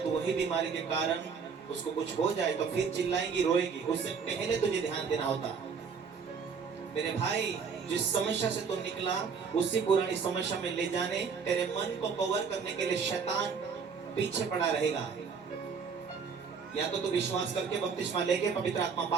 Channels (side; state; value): left; quieter; 5.8 dB